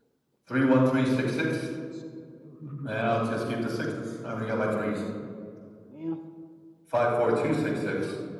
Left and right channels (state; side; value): identical; both; correlation 1.00